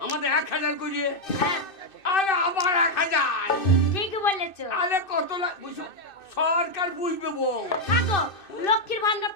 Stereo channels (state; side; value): late; right; 2.6 ms